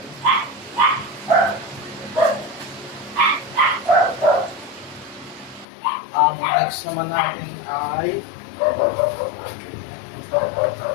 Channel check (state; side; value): drops out; right; at 5.7 s